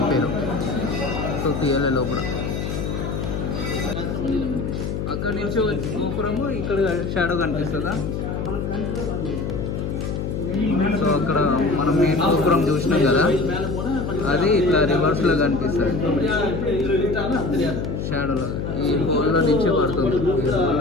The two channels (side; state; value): left; noise; hum, 3 dB below the sound